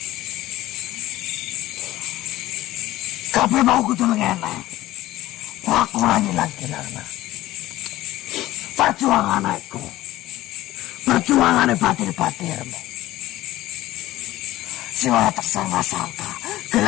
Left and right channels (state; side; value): quieter; right; 16.1 dB